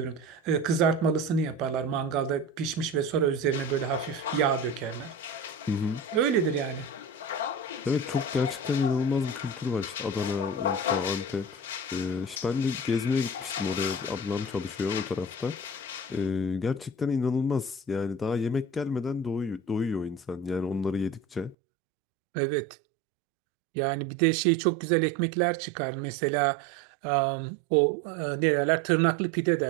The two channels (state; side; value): drops out; left; at 21.6 s